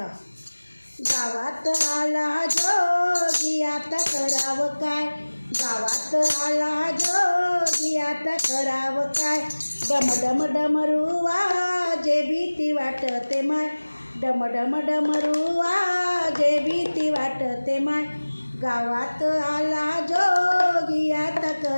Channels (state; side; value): inverted; both; correlation -1.00